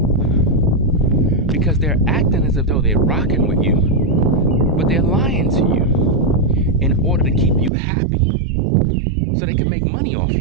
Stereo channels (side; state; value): left; drops out; at 7.7 s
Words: Because they're acting as if though they're rocking with you, but they're lying to you in order to keep you happy so they can make money off